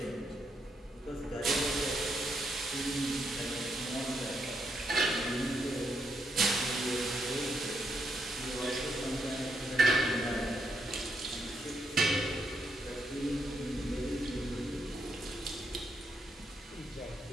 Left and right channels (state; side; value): normal; both; correlation 0.79